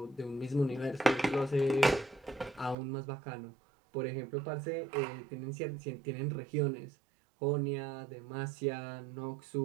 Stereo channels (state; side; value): drops out; left; at 2.8 s